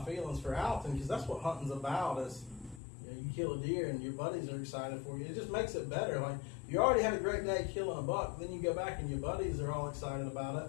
feelings for Alton, because that's what hunting's about. Is you kill a deer and your buddies are excited for you. It just makes it better. Like, you already had a great day killing a buck, then you go back and your buddies are all excited about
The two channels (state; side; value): drops out; right; at 2.8 s